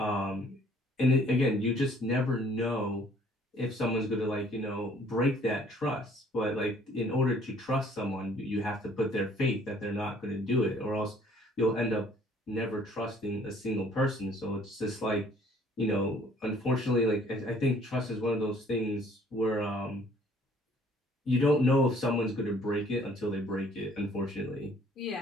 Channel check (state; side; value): normal; both; correlation 0.58